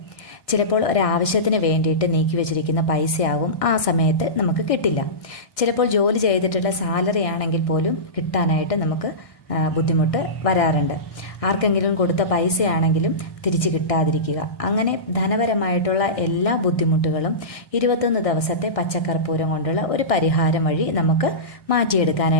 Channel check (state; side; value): late; right; 1.6 ms